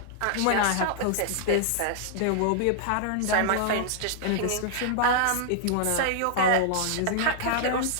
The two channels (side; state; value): both; different; correlation -0.01